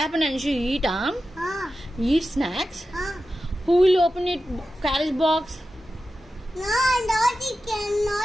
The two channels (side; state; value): both; normal; correlation 0.92